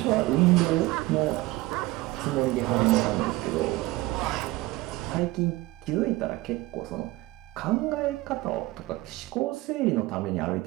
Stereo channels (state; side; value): quieter; left; 19.5 dB